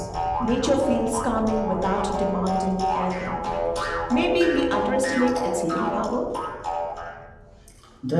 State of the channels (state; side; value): identical; both; correlation 1.00